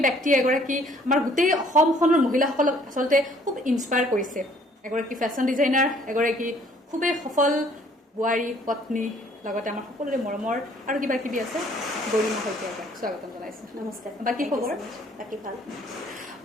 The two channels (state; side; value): normal; both; correlation 0.59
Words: ব্যক্তিয়ে এগৰাকী আমাৰ গোটেই অসমখনৰ মহিলাসকলক আচলতে খুব ইনস্পায়াৰ কৰিছে। এগৰাকী ফেশ্বন ডিজাইনাৰ, এগৰাকী খুবেই সফল বোৱাৰী, পত্নী, লগতে আমাৰ সকলোৰে মৰমৰ আৰু কিবা কিবি আছে। গৰিমা শইকীয়াক স্বাগতম জনাইছোঁ। নমস্কাৰ। বাকী খবৰ? বাকী ভাল।